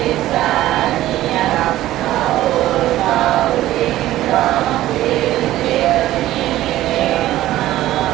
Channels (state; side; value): quieter; left; 14.8 dB